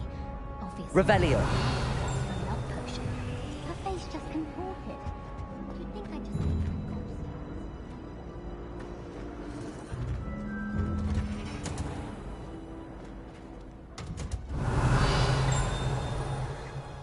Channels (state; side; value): identical; both; correlation 1.00